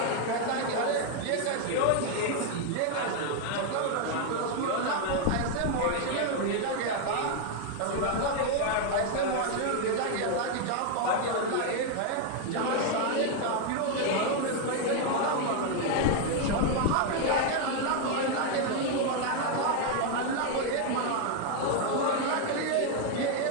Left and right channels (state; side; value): different; both; correlation 0.00